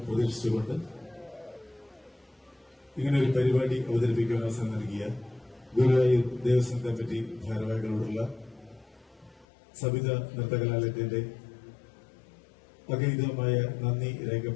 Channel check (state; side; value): drops out; right; at 9.5 s